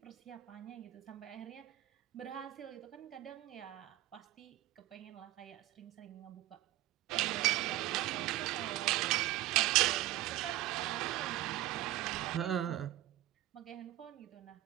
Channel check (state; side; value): quieter; left; 15.2 dB